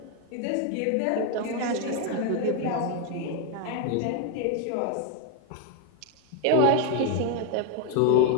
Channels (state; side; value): different; both; correlation 0.01